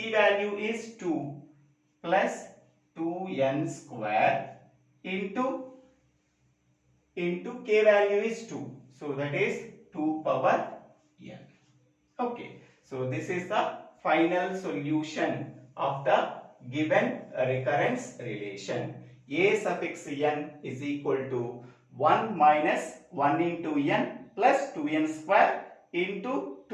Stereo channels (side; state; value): both; identical; correlation 1.00